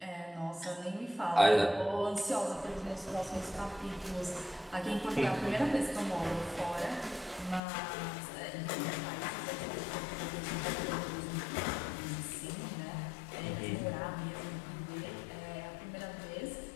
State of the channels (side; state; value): right; drops out; at 7.6 s